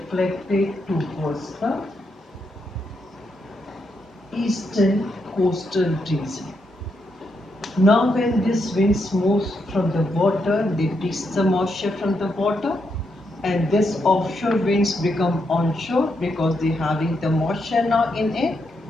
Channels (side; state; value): both; normal; correlation 0.81